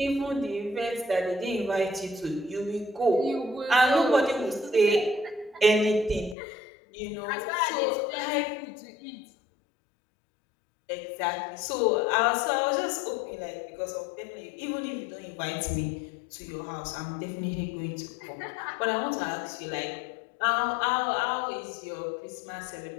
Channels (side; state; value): right; drops out; at 6.4 s